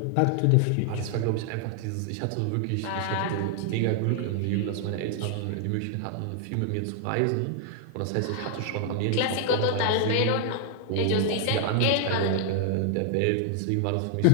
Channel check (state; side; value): different; both; correlation 0.00